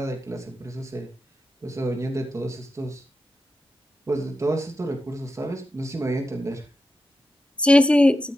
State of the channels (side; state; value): both; normal; correlation 0.89